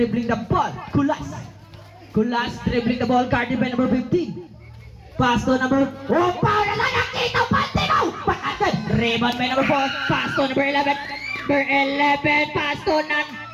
the ball, Kulas. Kulas dribbling the ball, guarded by number 15. Pass to number... Oh, foul na lang nakita, Pantino! Pagkatid, rebound by number 4. Pass to number 11. Number 11, pass to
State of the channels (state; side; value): identical; both; correlation 1.00